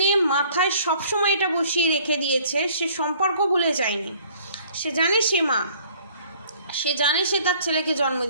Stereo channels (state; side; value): inverted; both; correlation -0.56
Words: মাথায় সবসময় এটা বসিয়ে রেখে দিয়েছে, সে সম্পর্ক ভুলে যায়নি। সে জানে সে মা, সে জানে সে তার ছেলেকে জন্ম